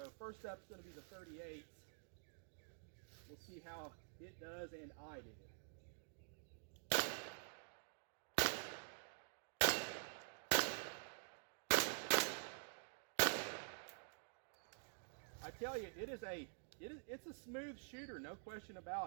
first up is going to be the 38s. We'll see how it does and I do. I tell you, it's a smooth shooter, no question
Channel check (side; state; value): left; silent; digital silence